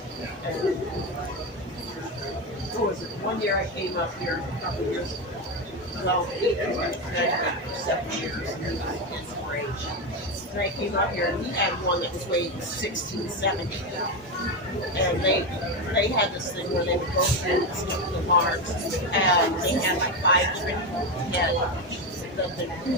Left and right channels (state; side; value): normal; both; correlation 0.13